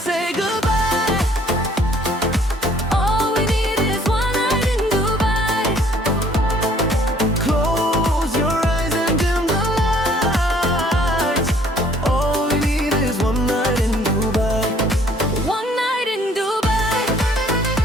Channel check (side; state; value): both; normal; correlation 0.59